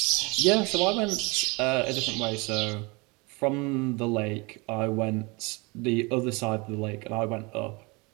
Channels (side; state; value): left; quieter; 27.3 dB